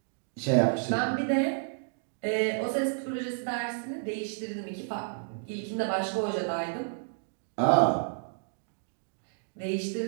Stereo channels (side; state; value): left; silent; digital silence